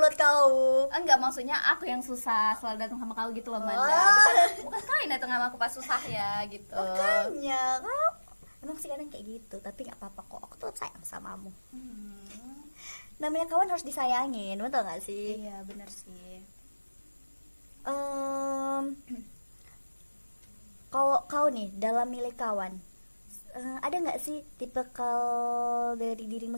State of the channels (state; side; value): inverted; both; correlation -1.00